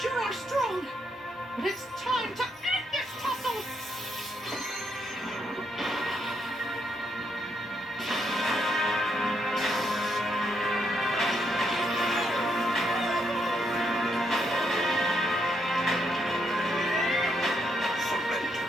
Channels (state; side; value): normal; both; correlation 0.77